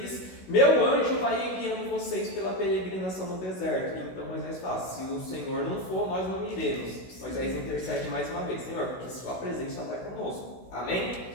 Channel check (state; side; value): late; right; 16 ms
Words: meu anjo vai guiando vocês pela peregrinação no deserto. Então Moisés fala, se o Senhor não for, nós não iremos. Moisés intercede mais uma vez, Senhor, porque sua presença vai conosco. Amém?